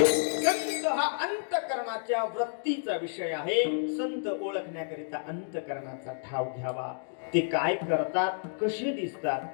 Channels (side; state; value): right; silent; digital silence